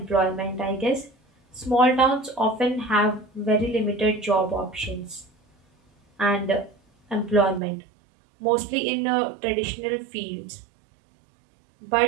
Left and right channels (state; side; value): drops out; left; at 7.6 s